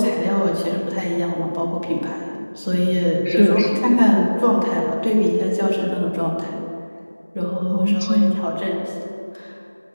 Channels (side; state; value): both; inverted; correlation -1.00